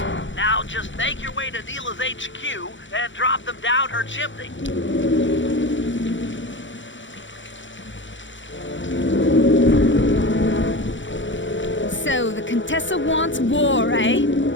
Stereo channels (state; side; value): late; right; 0.55 ms